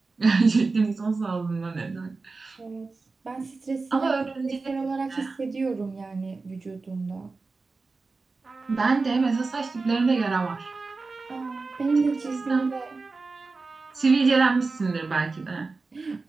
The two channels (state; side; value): quieter; left; 3.9 dB